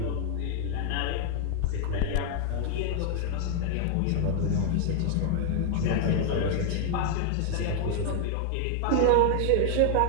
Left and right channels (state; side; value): different; both; correlation 0.00